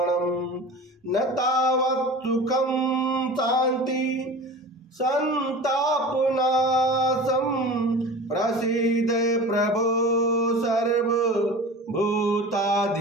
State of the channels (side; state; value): both; normal; correlation 0.36